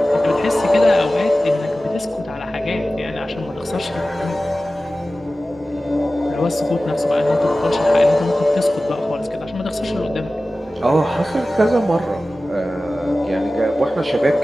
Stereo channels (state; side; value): normal; both; correlation 0.96